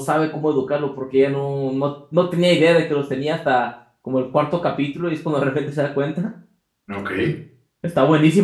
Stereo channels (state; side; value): identical; both; correlation 1.00